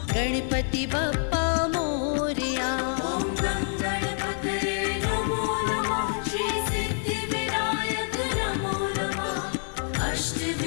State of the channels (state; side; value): silent; right; 60 dB below the other